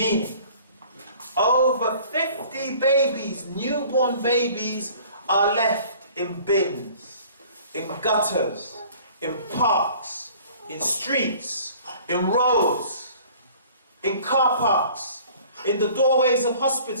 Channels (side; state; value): both; inverted; correlation -0.50